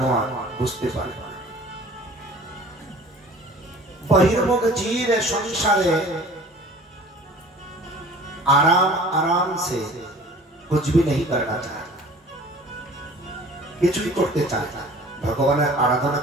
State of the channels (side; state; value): both; normal; correlation 0.46